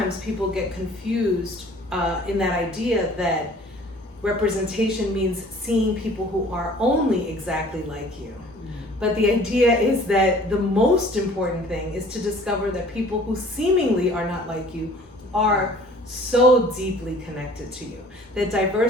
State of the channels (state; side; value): normal; both; correlation 0.51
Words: people get confused in that idea that representation means seeing people who are only exactly like you. But the idea is that the most important thing is to discover that people who seemingly are not like you are so deeply connected to you. That